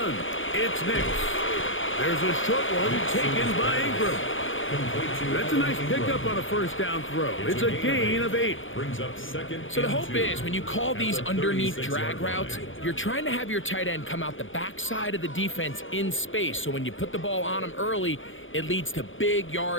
it's Nix. There's a short one taken by Ingram. That's a nice pickup on a first down throw. It's a gain of 8. So the hope is when you call these underneath drag routes, you're trying to have your tight end come out the backside of the defense in space. So when you put the ball on them early, it leads to big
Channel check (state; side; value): late; right; 0.57 ms